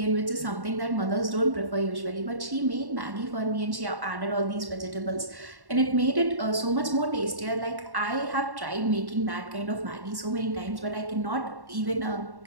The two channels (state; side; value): late; left; 1.1 ms